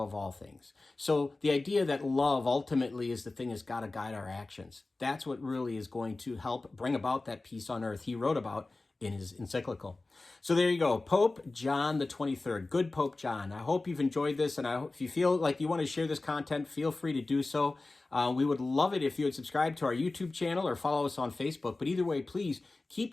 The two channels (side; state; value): right; quieter; 3.2 dB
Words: all things. So the idea that love ultimately is the thing that's got to guide our actions. That's what really is going to help bring about that peace on earth he wrote about in his encyclical. So there you go, Pope John the 23rd. Good Pope John. I hope you've enjoyed this, and I hope if you feel like you want to share this content, feel free to do so. We would love it if you would subscribe to our YouTube channel or follow us on Facebook. But either way, please